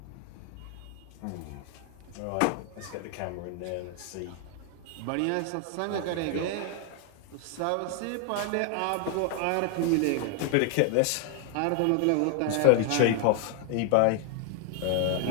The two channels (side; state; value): both; different; correlation 0.00